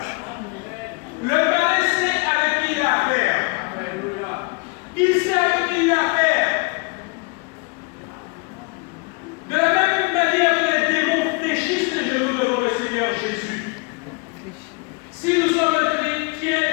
Le malin sait avec qui il a affaire. Il sait avec qui il a affaire. De la même manière que les démons fléchissent les genoux devant le Seigneur Jésus. Si nous sommes un chrétien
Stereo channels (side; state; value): right; quieter; 30.1 dB